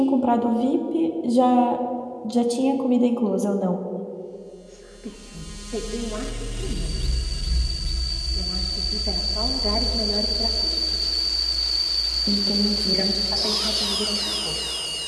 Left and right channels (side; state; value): both; identical; correlation 1.00